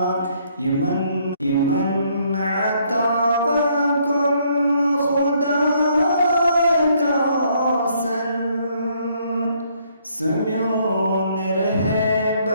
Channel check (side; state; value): both; inverted; correlation -0.68